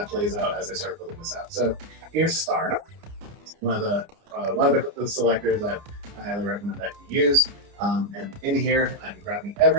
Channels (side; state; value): left; late; 30 ms